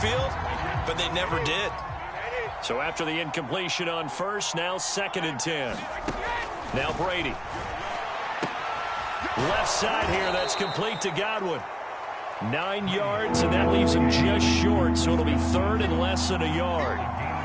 but they never did. So after the incompletion on first, now 2nd and 10. Now Brady. Left side here, that's complete to Godwin. 9 yards, and that leaves him just short, so it'll be 3rd and less than a yard.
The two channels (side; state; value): both; identical; correlation 1.00